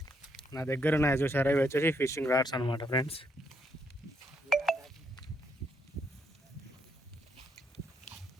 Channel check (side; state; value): both; normal; correlation 0.75